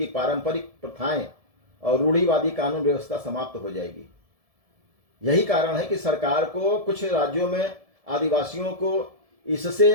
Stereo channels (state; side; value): late; left; 1.7 ms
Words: पारंपरिक प्रथाएं और रूढ़िवादी कानून व्यवस्था समाप्त हो जाएगी। यही कारण है कि सरकार को कुछ राज्यों में आदिवासियों को